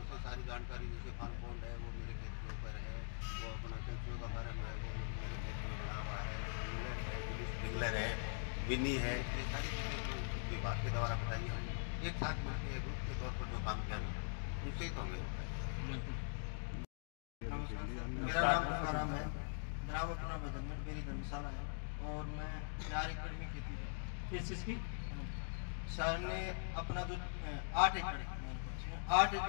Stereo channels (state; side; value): silent; right; digital silence